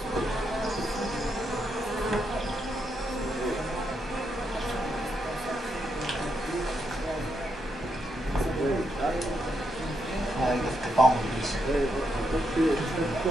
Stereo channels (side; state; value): both; normal; correlation 0.80